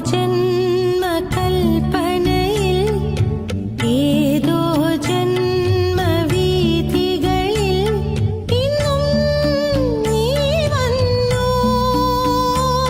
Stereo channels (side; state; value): both; identical; correlation 1.00